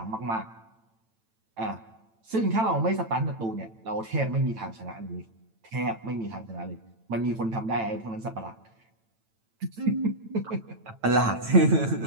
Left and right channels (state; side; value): late; left; 9.0 ms